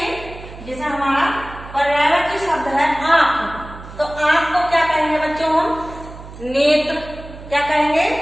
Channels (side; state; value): right; noise; hum, 15 dB below the sound